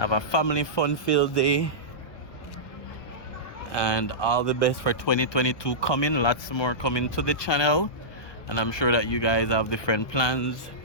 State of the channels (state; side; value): late; right; 1.2 ms